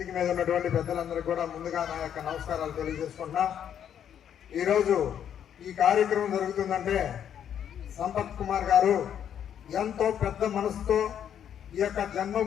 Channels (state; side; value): quieter; right; 9.3 dB